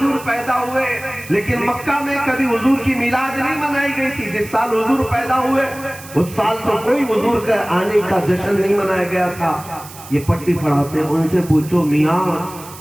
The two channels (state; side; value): noise; right; hiss, 17 dB below the sound